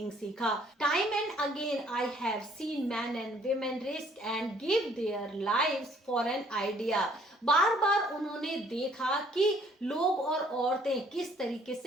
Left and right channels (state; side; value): normal; both; correlation 0.61